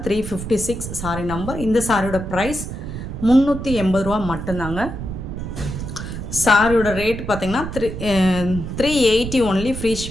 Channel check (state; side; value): noise; right; rumble, 7 dB below the sound